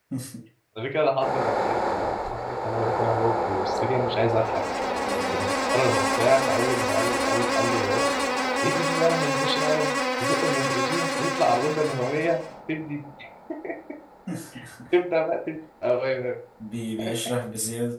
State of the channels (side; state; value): both; identical; correlation 1.00